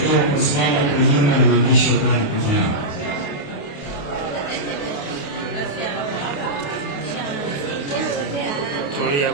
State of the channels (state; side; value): late; right; 28 ms